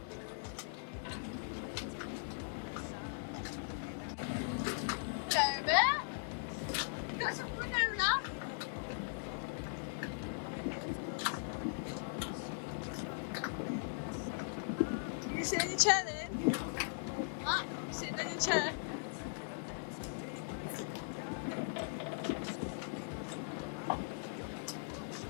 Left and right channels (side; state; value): right; silent; digital silence